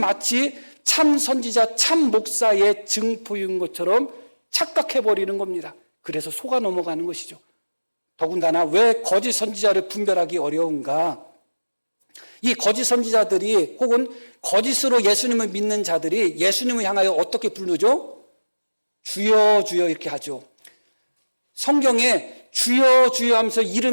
참 선지자, 참 목사의 증표인 것처럼 착각해버리는 겁니다. 그래서 속아 넘어가는 것이죠. 더군다나 왜 거짓 선지자를 분별하기 어려운가? 이 거짓 선지자들이 혹은 거짓으로 예수님을 믿는 자들이 예수님을 향하여 어떻게 부르죠? 주여 주여 이렇게 하죠. 성경에 주여 주여 하면서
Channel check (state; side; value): inverted; both; correlation -1.00